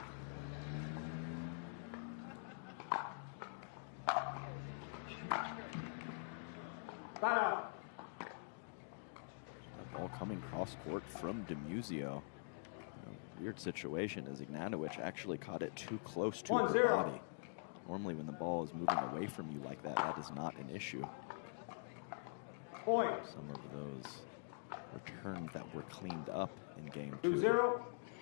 Ball coming cross court from DiMuzio. Weird situation as Ignatowich actually caught it too close to her body. Normally when the ball is moving away from you like that, that is not an issue. Some of those returns that were cleaned up in game 2. 2-0.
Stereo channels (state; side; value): silent; right; digital silence